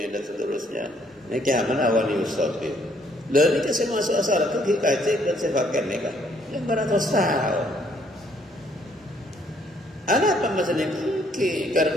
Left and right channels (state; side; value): normal; both; correlation 0.66